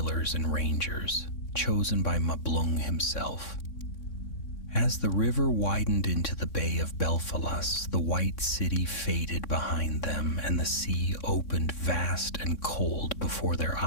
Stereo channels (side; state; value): right; late; 3.6 ms